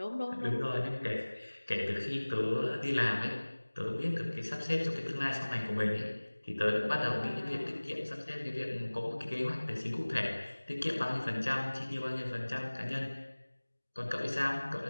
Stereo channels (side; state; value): both; inverted; correlation -1.00